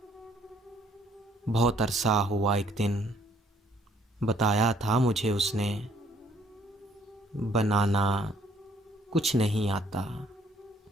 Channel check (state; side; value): normal; both; correlation 0.63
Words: बहुत अरसा हुआ एक दिन, बताया था मुझे उसने, बनाना कुछ नहीं आता,